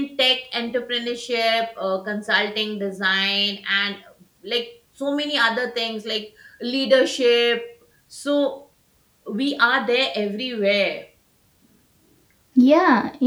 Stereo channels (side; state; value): both; identical; correlation 1.00